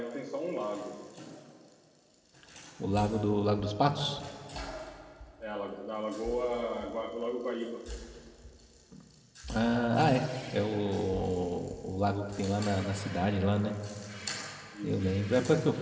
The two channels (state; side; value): identical; both; correlation 1.00